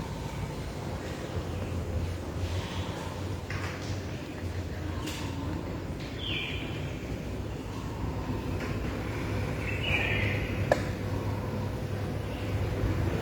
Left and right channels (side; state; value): both; identical; correlation 1.00